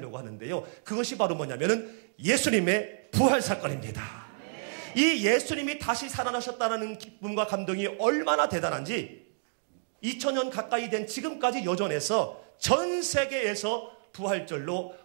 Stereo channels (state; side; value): silent; left; digital silence